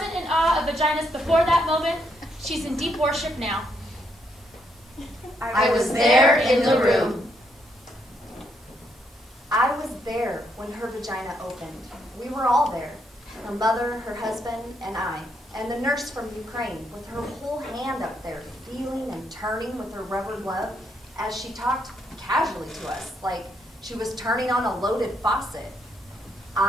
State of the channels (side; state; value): both; normal; correlation 0.75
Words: in awe of vaginas before that moment, she's in deep worship now. I was there in the room. I was there when her vagina opened. We were all there. Her mother, her husband, and I, and the nurse from Ukraine, with her whole hand up there, feeling and turning with her rubber glove as she talked casually to us, like she was turning on a loaded faucet.